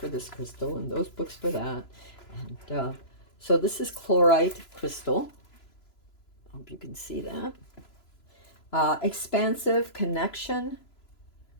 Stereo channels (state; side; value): late; right; 3.0 ms